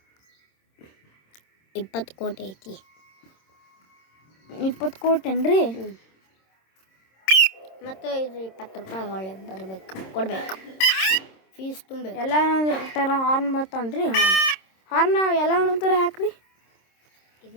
20 ಕೋಟಿ ಐತಿ. 20 ಕೋಟಿ ಏನ್ರಿ? ಮತ್ತು ಇದು 20 ರೂಪಾಯಿ ಒಳ್ಳೆ ಕೊಡ್ಬೇಕು. ಫೀಸ್ ತುಂಬಬೇಕು. ಎಲ್ಲ ಥರ ಹಾರ್ನ್ ಬರ್ತಾವನ್ರಿ. ಹಾರ್ನ್ ಎಲ್ಲ ಒಂದೊಂದು ಥರ ಹಾಕ್ರಿ.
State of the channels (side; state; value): right; late; 26 ms